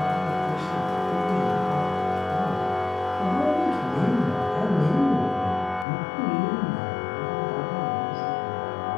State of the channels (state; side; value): drops out; right; at 5.9 s